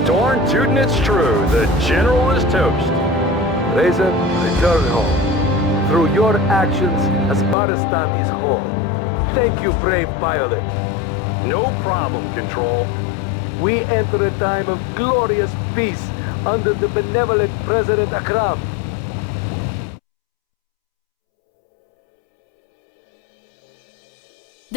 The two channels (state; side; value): drops out; right; at 7.6 s